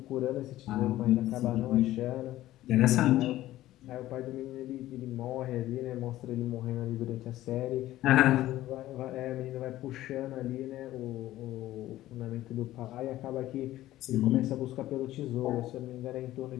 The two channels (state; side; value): quieter; right; 15.0 dB